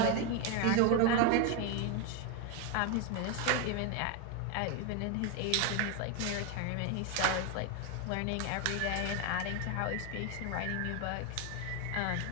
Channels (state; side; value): different; both; correlation 0.02